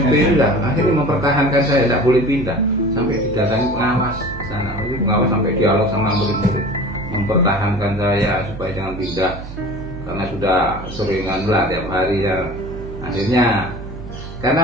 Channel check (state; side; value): noise; right; hum, 12 dB below the sound